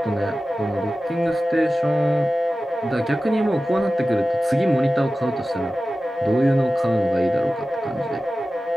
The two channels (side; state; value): both; normal; correlation 0.95